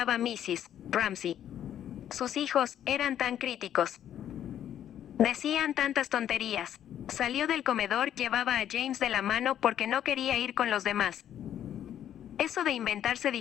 Mrs. Ramsay. Sus hijos eran tan críticos. Decían tantas tonterías. Salió del comedor, llevaba a James de la mano porque no quería ir con los demás. Eso de inventarse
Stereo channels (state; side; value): quieter; right; 10.5 dB